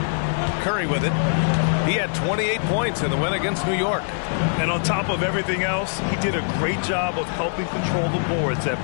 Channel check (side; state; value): right; silent; 56 dB below the other